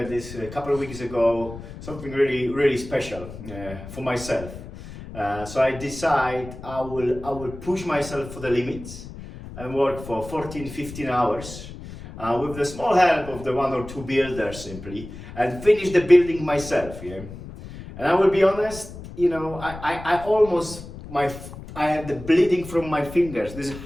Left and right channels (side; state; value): left; noise; rumble, 13 dB below the sound